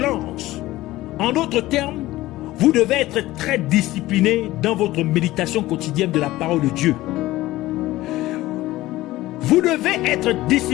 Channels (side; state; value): right; quieter; 17.0 dB